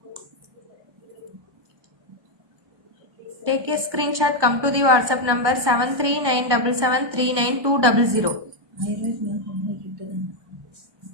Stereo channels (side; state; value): left; late; 1.1 ms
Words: Take a screenshot. Come to the WhatsApp number 7397739200.